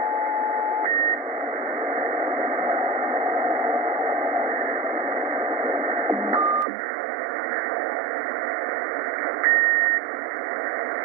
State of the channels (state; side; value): drops out; left; at 6.7 s